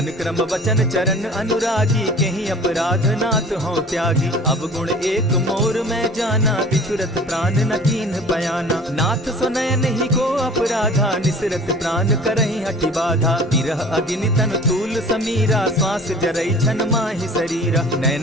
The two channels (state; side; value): normal; both; correlation 0.45